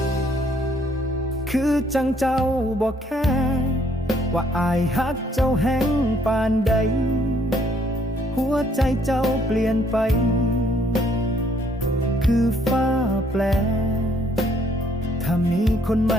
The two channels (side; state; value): both; normal; correlation 0.65